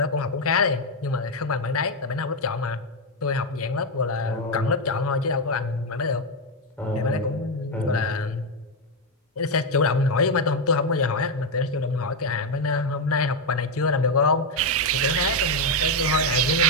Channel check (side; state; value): both; normal; correlation 0.04